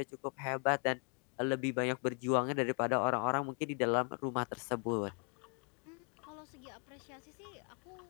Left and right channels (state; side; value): quieter; right; 39.4 dB